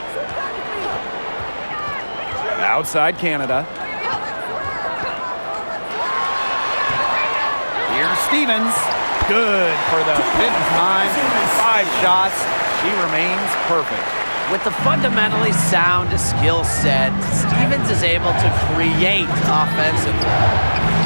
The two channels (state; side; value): inverted; both; correlation -1.00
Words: Outside Canada. Here's Stevens. Good for the 5th time. 5 shots. She remains perfect. With the fundamentally sound skill set, Stevens is able to create offensively.